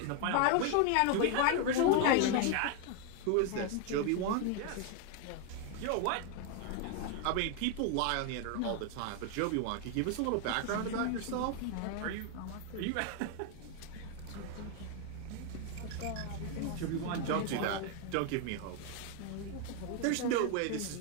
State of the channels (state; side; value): different; both; correlation 0.01